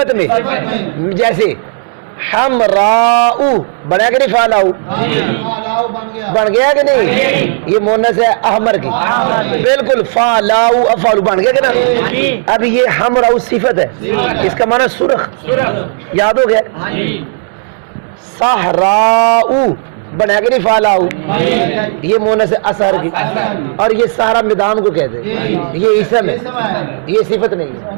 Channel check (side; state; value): left; silent; digital silence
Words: میں، جیسے حمراؤ بنا کہ نہیں؟ فعلاؤ بن گیا کہ نہیں؟ یہ مونس ہے احمر کی، بالکل. فعلاؤ افعال بن گیا کہ نا؟ اب یہ حمراؤ صفت ہے، اس کا معنی سرخ، یاد ہو گیا؟ صحراؤ بنا کے نہیں؟ فعلاؤ یہ مونس ہے اثر کی، اور یہ سارا میدان کو کہتے ہیں، یہ اسم ہے، یہ صفت نہیں